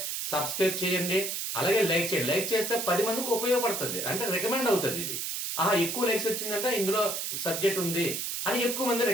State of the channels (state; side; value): noise; right; hiss, 3 dB below the sound